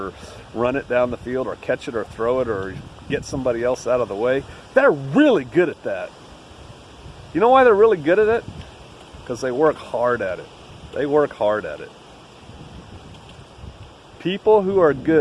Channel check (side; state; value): both; identical; correlation 1.00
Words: run it down the field or catch it or throw it or get somebody else out of the way, they're really good at that. You know why they're really good at it? Because they work hard at it. They work hard at it. People who are